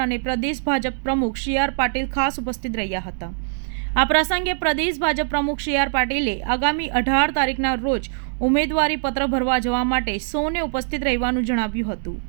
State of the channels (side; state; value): left; silent; digital silence